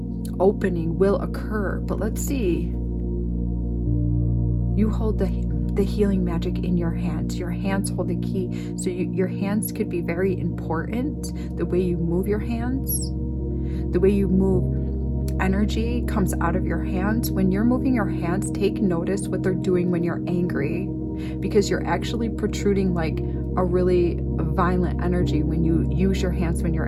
opening will occur. But let's see, you hold the healing magic in your hands. Your hands hold the key. So your hands could be very important. The way you move your hands, the way you move energy comes out of your hands. When you're moving your hands, take notice what they're doing when you're angry, because you're actually protruding like a really violent energy when you use your hands when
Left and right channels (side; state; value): both; identical; correlation 1.00